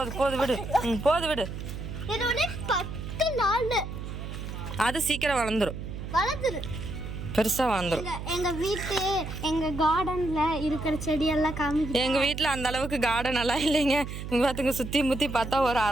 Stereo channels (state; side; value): noise; right; hum, 8 dB below the sound